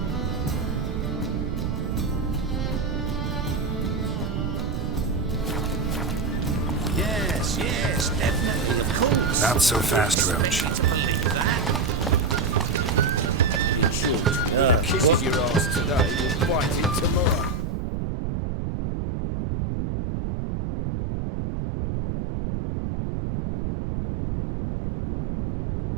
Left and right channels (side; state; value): right; noise; rumble, 2 dB below the sound